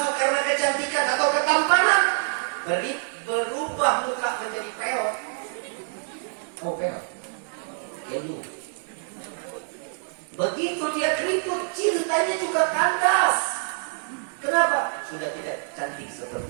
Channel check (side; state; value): left; silent; 61 dB below the other